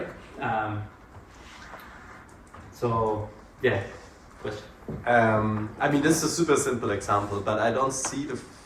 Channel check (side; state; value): both; identical; correlation 1.00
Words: So, yeah, question. I mean, this is a super simple example, but I don't see the